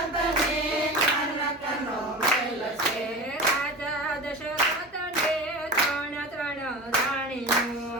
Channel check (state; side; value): normal; both; correlation 0.31